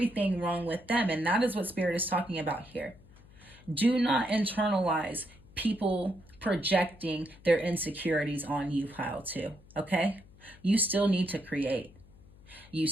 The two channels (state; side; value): noise; left; hum, 24 dB below the sound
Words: wrong with them. And that is what Spirit is talking about here. Do not internalize people projecting their insecurities on you, pile two, okay? You still need to create. You